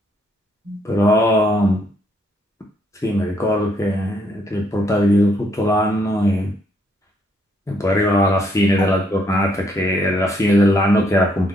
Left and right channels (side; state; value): both; normal; correlation 0.71